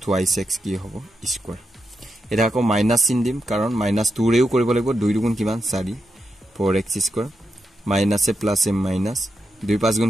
2x কি হ'ব square এটা আকৌ মাইনাস চিন দিম কাৰণ minus 2 ৰেও কৰিব লাগিব 2 দুগুণ কিমান 4 4x square minus এ plus এ minus 2 5 গুণ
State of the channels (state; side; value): normal; both; correlation 0.85